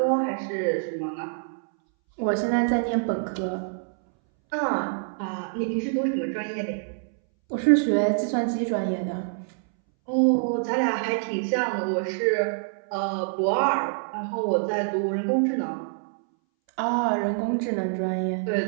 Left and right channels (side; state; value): left; silent; 61 dB below the other